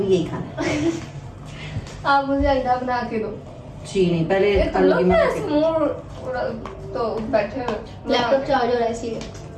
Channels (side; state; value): both; identical; correlation 1.00